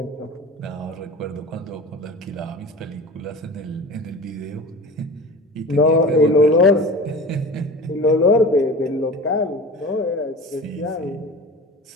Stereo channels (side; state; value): both; normal; correlation 0.35